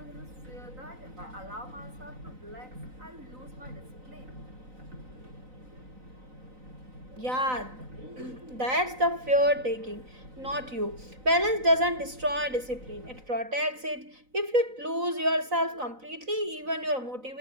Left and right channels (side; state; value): left; late; 3.9 ms